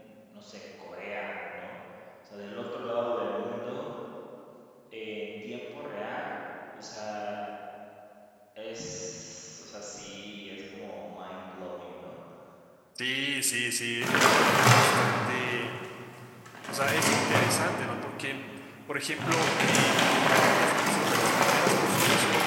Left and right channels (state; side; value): identical; both; correlation 1.00